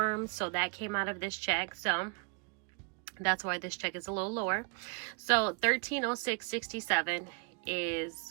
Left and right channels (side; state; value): left; quieter; 33.0 dB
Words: so that came out of this check. So that's why this check is a little lower. So $13.06.67